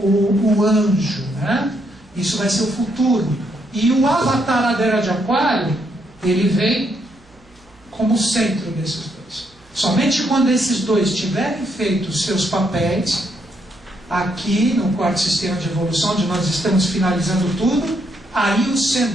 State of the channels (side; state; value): right; noise; hum, 29 dB below the sound